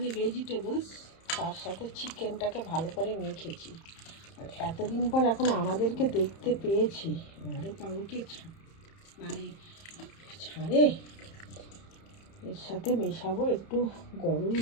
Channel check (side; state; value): right; late; 31 ms